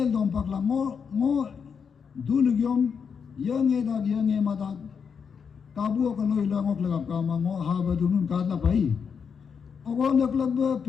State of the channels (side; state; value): right; quieter; 6.5 dB